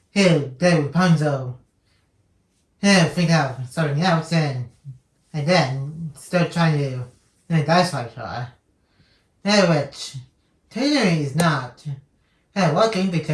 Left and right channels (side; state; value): both; identical; correlation 1.00